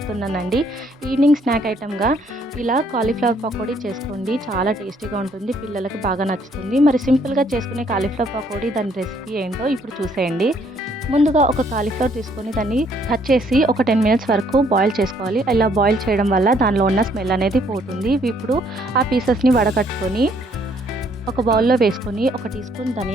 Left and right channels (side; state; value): both; normal; correlation 0.66